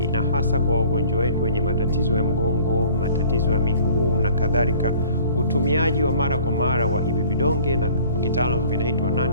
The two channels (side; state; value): both; inverted; correlation -0.50